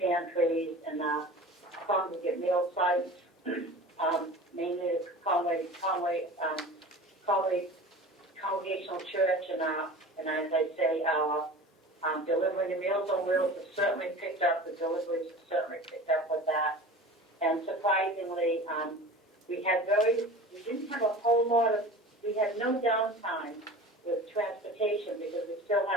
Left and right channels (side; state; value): both; normal; correlation 0.37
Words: and our congregate meal sites, mainly the Conway Congregational Church and as I say, our delivering the Meals on Wheels has certainly picked up. The deliveries have certainly picked up with that. And surprisingly, we had no downtime with transportation because we still